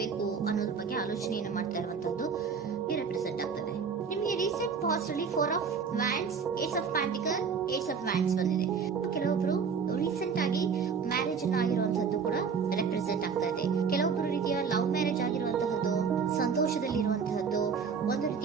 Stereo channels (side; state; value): left; quieter; 6.0 dB